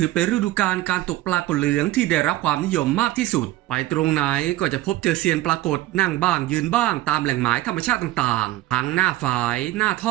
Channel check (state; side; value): quieter; left; 16.4 dB